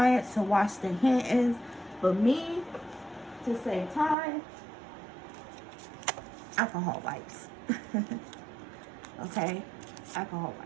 to wash their hands. But me, to save time, alcohol wipes. Okay? Alcohol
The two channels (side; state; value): left; drops out; at 4.2 s